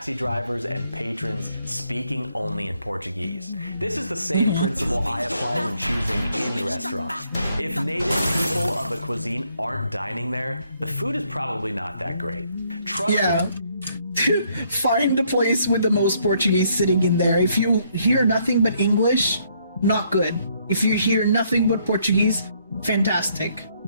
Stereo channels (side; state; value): both; inverted; correlation -0.70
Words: drivers and patrons speaking only in Portuguese. This is the same principle I apply when choosing any restaurant. If native people of the cuisine aren't dining there, the food is probably not that great. Find the place with the most Portuguese sitting in there. If you hear nothing but English, not good. If you hear nothing but Portuguese, fantastic.